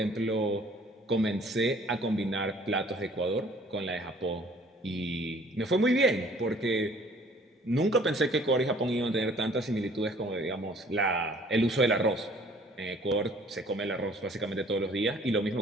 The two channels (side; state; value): both; normal; correlation 0.55